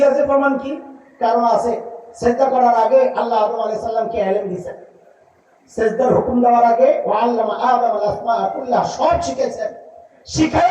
যে প্রমাণ কি? কারণ আছে। সেজদা করার আগে আল্লাহ আদম আলাইহিস সালামকে ইলম দিয়েছেন। সেজদার হুকুম দেওয়ার আগে ওয়া আল্লামা আদম আল আসমা কুল্লাহ সব শিখেছেন।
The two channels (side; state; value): both; identical; correlation 1.00